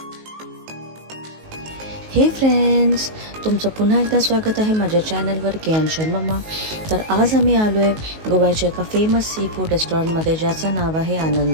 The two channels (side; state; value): left; late; 19 ms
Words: हे फ्रेंड्स, तुमचं पुन्हा एकदा स्वागत आहे माझ्या चॅनलवर केएन मम्मा. तर आज आम्ही आलो आहे गोव्याच्या एका फेमस सी फूड रेस्टॉरंटमध्ये, ज्याचं नाव आहे